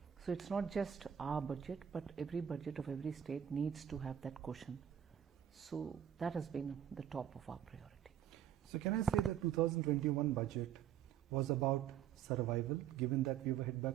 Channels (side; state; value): left; quieter; 9.6 dB